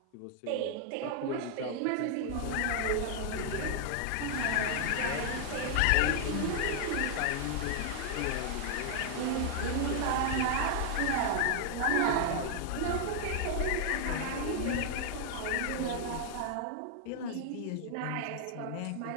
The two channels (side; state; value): both; different; correlation 0.00